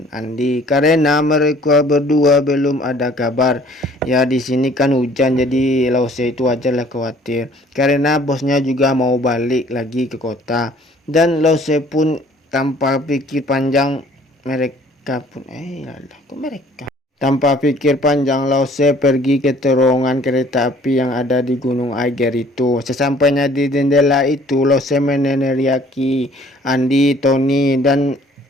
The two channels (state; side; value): normal; both; correlation 0.55